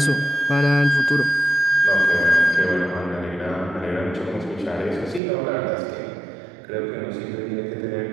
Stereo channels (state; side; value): drops out; left; at 5.2 s